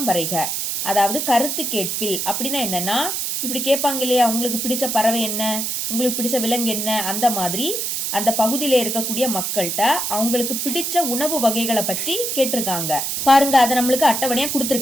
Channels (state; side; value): noise; right; hiss, 2 dB below the sound